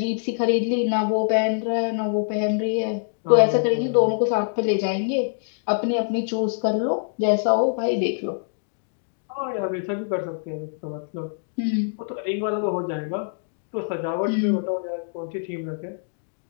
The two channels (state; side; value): silent; right; digital silence